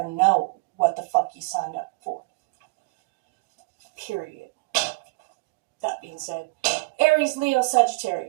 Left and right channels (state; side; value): quieter; left; 27.5 dB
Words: know what the fuck you signed up for. Period. That being said, Aries, Leo,